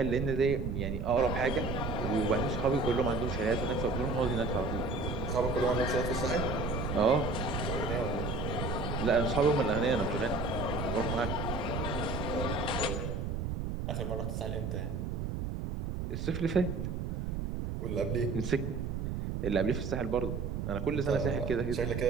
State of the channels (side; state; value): right; noise; rumble, 3 dB below the sound